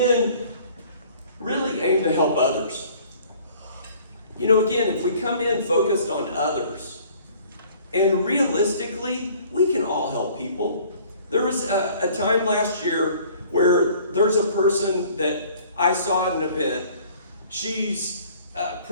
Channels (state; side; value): inverted; both; correlation -0.54